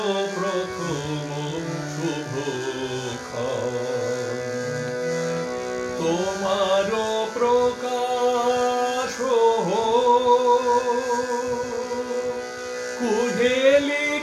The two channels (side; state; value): both; identical; correlation 1.00